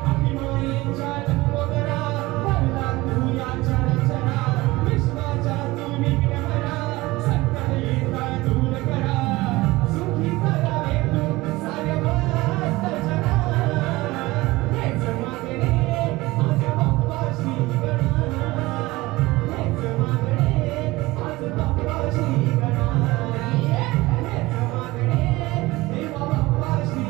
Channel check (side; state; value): left; quieter; 20.1 dB